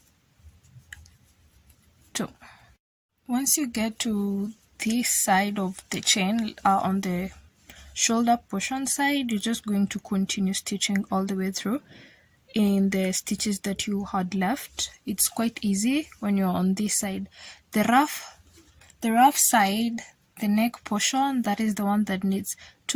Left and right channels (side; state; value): both; identical; correlation 1.00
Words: 2. Once you get to this side of the chain, on the shoulder portion side, you're just going to continue stitching all the way through in the stitches that you had left. It's quite easy when you're on this side. The rough side, the neck portion, that is the one that needs